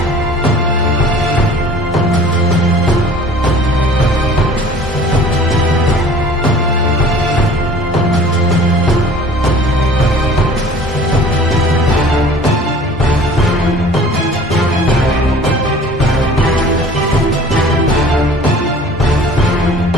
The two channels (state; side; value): normal; both; correlation 0.47